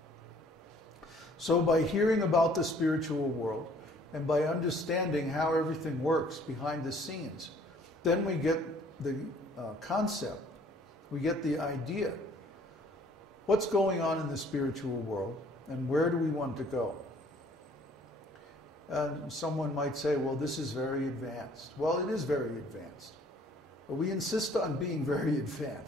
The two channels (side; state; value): both; normal; correlation 0.58